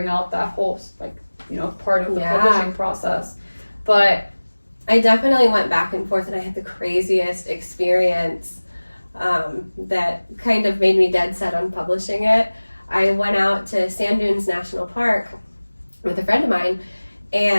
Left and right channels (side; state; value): both; inverted; correlation -1.00